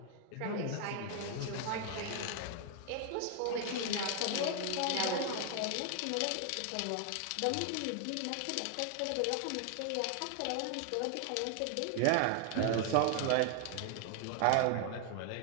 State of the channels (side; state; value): both; different; correlation 0.00